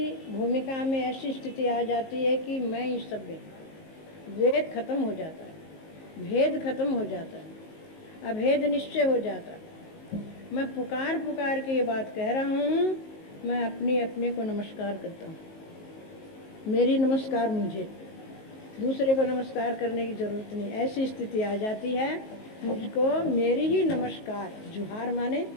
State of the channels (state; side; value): late; right; 19 ms